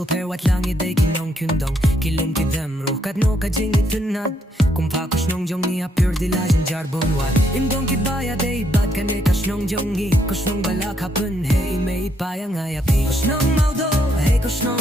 per wat lang iday kinong kyundong Kilum ki them ruh katno ka jing itunad Kumpa koşnong jong ni apur dilajin jarbon wat Imdong ki baya day bad ka ne koşnong jong ni Koşnong balak hapun hey may payang ayapi Koşnong maudo hey koşnong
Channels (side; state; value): both; normal; correlation 0.74